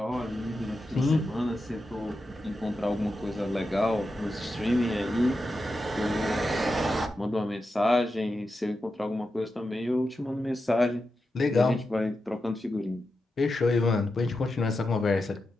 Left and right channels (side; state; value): both; normal; correlation 0.89